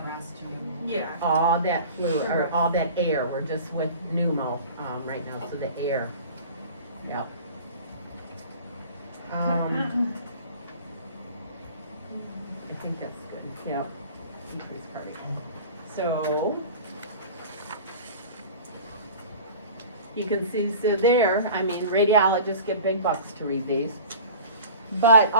yeah. All that fluid, or all that air, we're just with pneumo, right now, so the air, yep. I think that's good, yep, increase cardiac. So, you can see, so there, I mean, radiologists get big bucks to read these. But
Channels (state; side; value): inverted; both; correlation -0.40